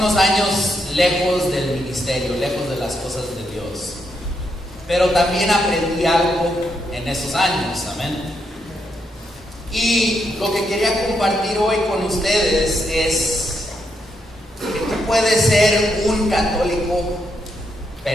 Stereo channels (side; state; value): both; normal; correlation 0.80